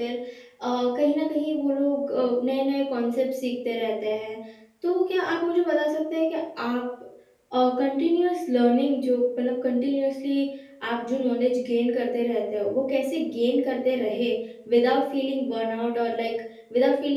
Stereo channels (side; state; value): both; identical; correlation 1.00